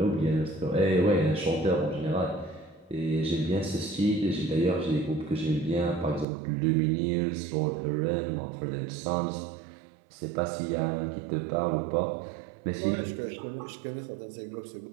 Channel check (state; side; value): drops out; left; at 6.2 s